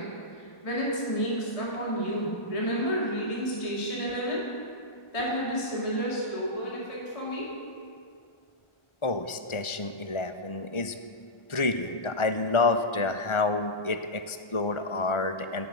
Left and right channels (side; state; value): right; late; 1.4 ms